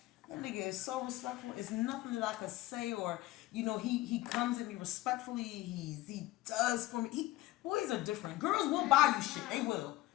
That nigga is so respectful. It's nothing that I could say, or he comes at me respectfully. He does for me. Boys are different. Girls will buy you shit. They will.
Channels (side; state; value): right; quieter; 17.5 dB